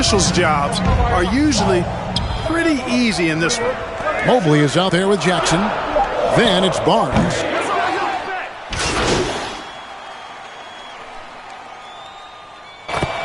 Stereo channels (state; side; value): identical; both; correlation 1.00